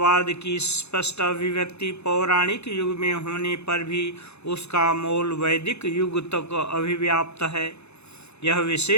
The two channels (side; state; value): right; late; 0.80 ms